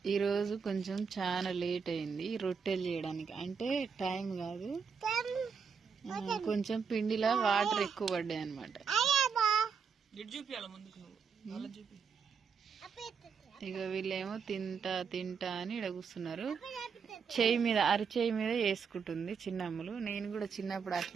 ఈరోజు కొంచెం చాలా లేట్ అయింది రొట్టెలు చేయడానికి. అంటే టైం కాదు, కొంచెం పిండిలో వాటర్ ఎక్కువ పడ్డాయి అనమాట. ఇక వీళ్ళేమో తింటా తింటా అని ఇక్కడ కూర్చున్నారు. చేయి మీద, అరిచేయి మీద వేసుకుంటుంది చిన్నమ్మలు. నేను కూడా చిన్నప్పుడు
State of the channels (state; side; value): quieter; left; 6.1 dB